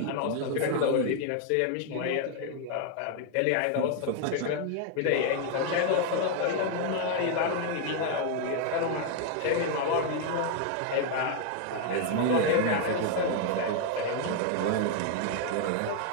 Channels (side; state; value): both; different; correlation 0.00